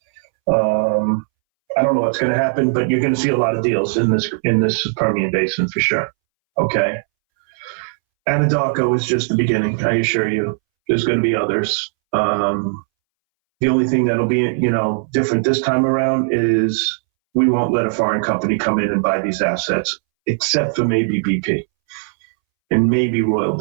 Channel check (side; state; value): left; silent; 65 dB below the other